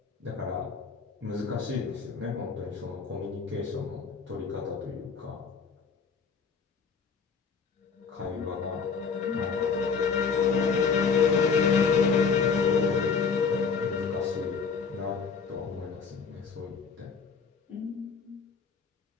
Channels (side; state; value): right; quieter; 5.6 dB